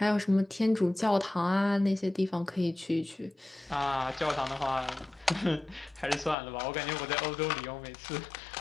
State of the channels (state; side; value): drops out; right; at 6.4 s